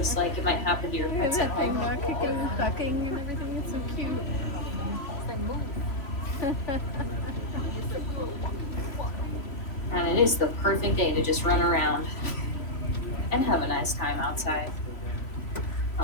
like it might happen to your pets at home. Kicking and ducking and everything. It's so cute. And it is the perfect day to just run around and have a nice time outside.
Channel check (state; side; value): late; right; 3.0 ms